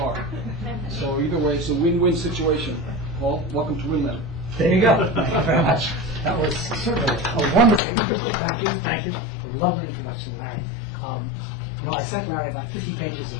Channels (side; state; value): right; drops out; at 7.8 s